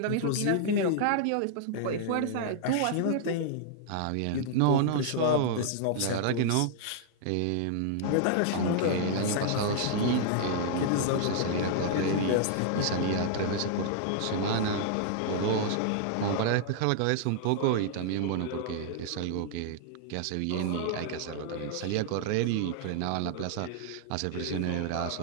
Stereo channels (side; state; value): both; different; correlation -0.01